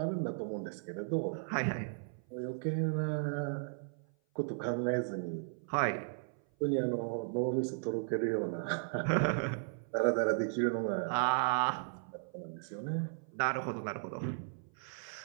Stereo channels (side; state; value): left; silent; 54 dB below the other